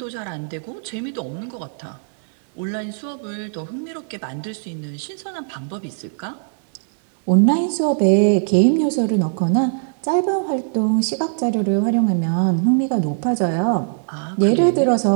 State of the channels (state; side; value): silent; left; 65 dB below the other